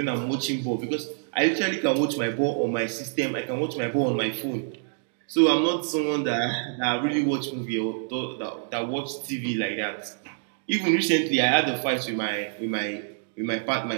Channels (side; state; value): left; silent; digital silence